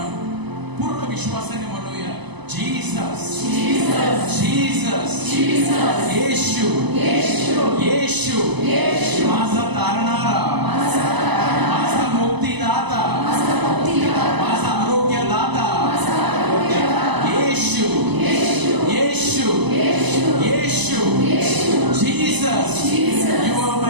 पूर्ण विश्वासाने म्हणूया, जीसस, जीसस, येशू, येशू, माझा तारणारा, माझा मुक्तीदाता, माझा आरोग्यदाता, येशू, येशू, येशू, Jesus. You are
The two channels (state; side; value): late; left; 0.99 ms